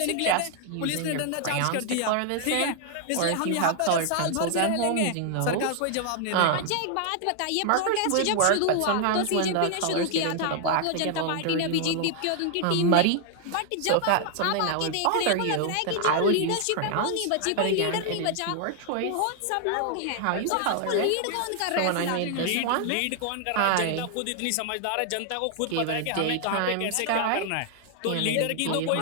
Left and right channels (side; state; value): both; different; correlation 0.00